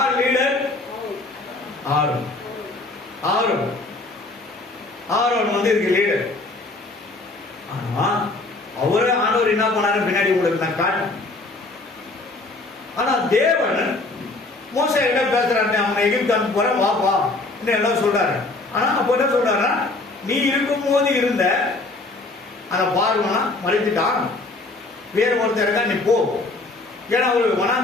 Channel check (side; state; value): right; quieter; 3.2 dB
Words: லீடர்? ஆரோன். ஆரோன் ஆரோன் வந்து இதுக்கு லீடர். ஆனா அவரே ஆண்டவர் என்ன பண்ணாரு பின்னாடி உங்களுக்கு நான் காட்டு. ஆனா தேவன் மோசே கிட்ட பேசுறாரு, அவனை எகிப்து அனுப்ப போற வாப்பா எல்லாம் சொல்றாரு. ஆனா அப்ப என்ன சொல்றாரு, நீ இருக்கும் போது இருந்த அந்த பார்வனா மறைத்துட்டான், வேற ஒருத்தர் இருக்கா நீ போ. ஏன்னா அவரு